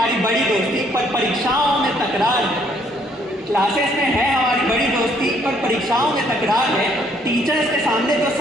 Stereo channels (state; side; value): normal; both; correlation 0.66